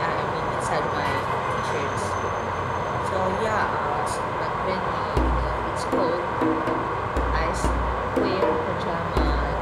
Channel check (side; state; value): both; identical; correlation 1.00